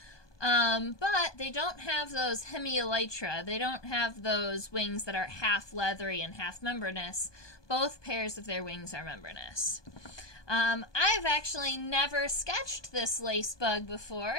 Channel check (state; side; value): late; right; 1.2 ms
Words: But they don't have those hemielytra. They don't have those wings that are half leathery and half membranous. Both pairs of their wings are membranous. I've actually never sketched this lace bug